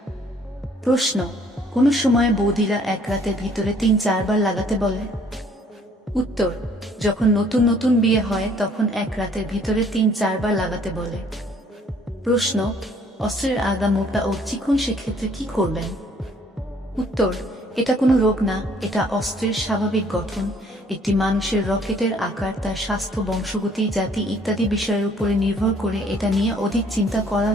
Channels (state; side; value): normal; both; correlation 0.60